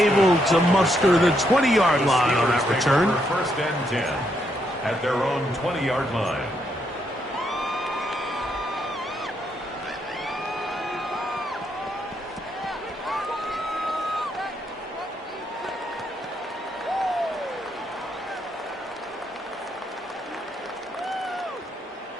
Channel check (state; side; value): normal; both; correlation 0.77